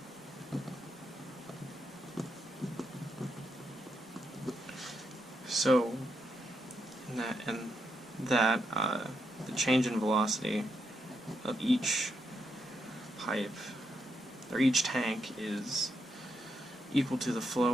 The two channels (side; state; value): both; normal; correlation 0.81